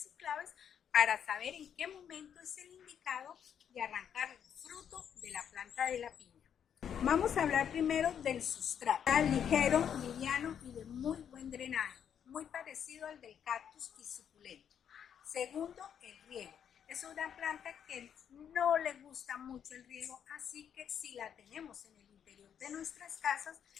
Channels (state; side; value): quieter; right; 8.5 dB